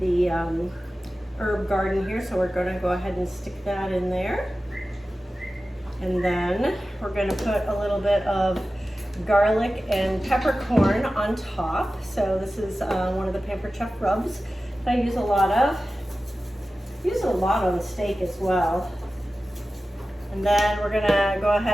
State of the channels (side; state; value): both; normal; correlation 0.95